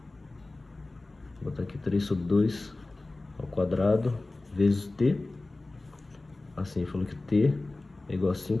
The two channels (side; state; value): right; quieter; 3.0 dB